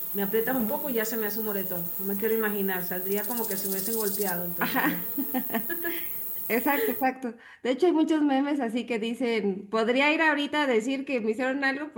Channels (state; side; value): identical; both; correlation 1.00